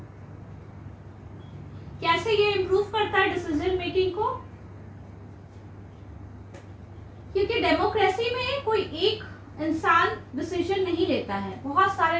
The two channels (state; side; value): identical; both; correlation 1.00